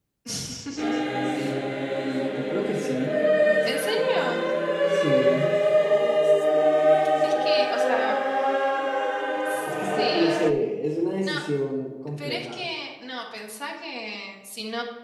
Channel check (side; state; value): both; identical; correlation 1.00